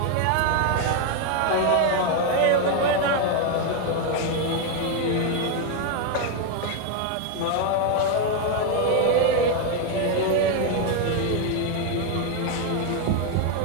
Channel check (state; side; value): different; both; correlation 0.01